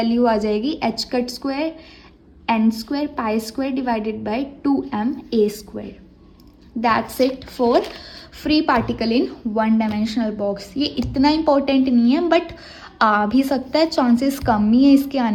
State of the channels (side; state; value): both; identical; correlation 1.00